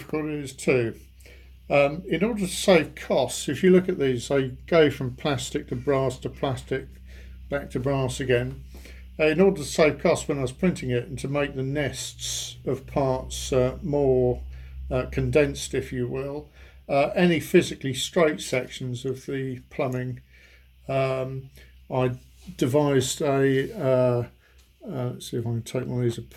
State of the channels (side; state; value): both; identical; correlation 1.00